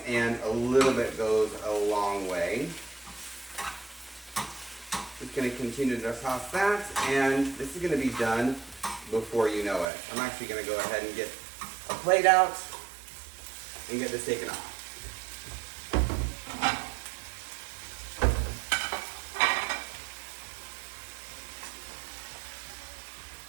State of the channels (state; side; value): drops out; left; at 9.9 s